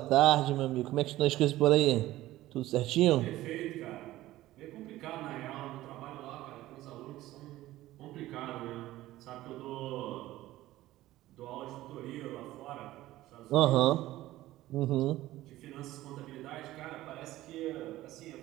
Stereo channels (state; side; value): quieter; left; 16.0 dB